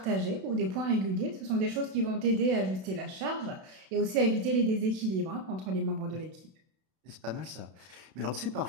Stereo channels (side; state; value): left; late; 32 ms